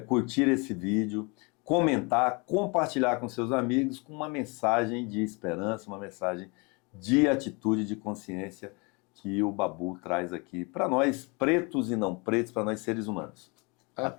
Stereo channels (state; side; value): quieter; right; 29.5 dB